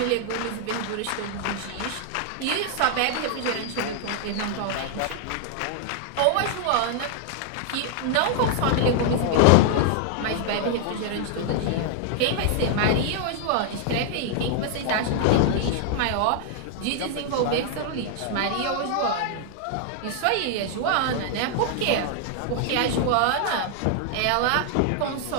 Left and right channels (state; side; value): different; both; correlation 0.00